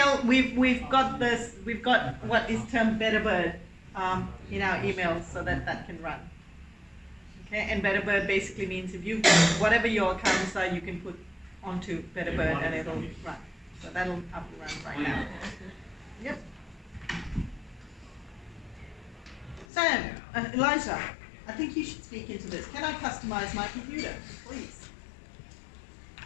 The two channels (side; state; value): right; drops out; at 19.7 s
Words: we've got this. We've got what is termed Betterbird in our emails, so that can run. Okay, and Betterbird basically means if you whatever your accounts are, you can put onto Betterbird and it'll run. So that'll up and run right now. Yep. Sam, Elijah, I think you should speak into this. Can I customize my computer, please?